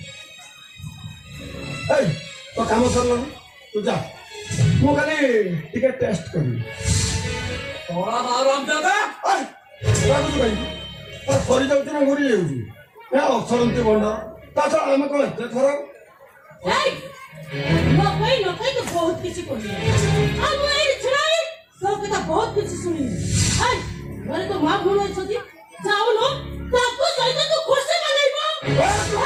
ଏଇ ତ କାମ ସରିଲାନି ତୁ ଯା ମୁଁ ଖାଲି ଟିକେ ଟେଷ୍ଟ କରିବି ଶଳା ଆରାମ ଦାଦା ସରିଯାଉଛି ନା ଘୁରି ଯାଉଛି ଅସରନ୍ତି ଭଣ୍ଡ ତା ଛଡା ଆମେ କଣ ଏତେ ଥର ନ କହି ତ ବହୁତ କିଛି କହିଲେ ଆଉ ମୁଁ ଏଇଠି ଛିଡ଼ା ହେଇ ତୋ କଥା ବହୁତ କିଛି ଶୁଣିଲି ଘରେ ତ ମା ଭଉଣୀ ଅଛନ୍ତି ଯାଉନୁ ତାକୁ ସହିତ ତୁ ଖୁସି ମନେଇବ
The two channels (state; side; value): identical; both; correlation 1.00